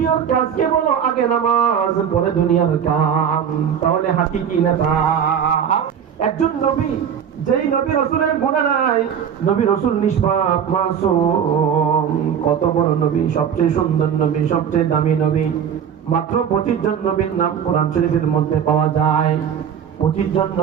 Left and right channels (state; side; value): quieter; left; 8.2 dB